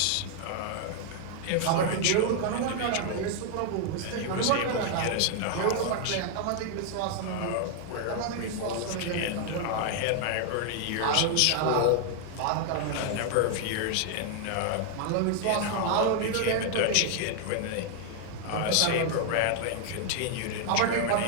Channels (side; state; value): both; different; correlation 0.00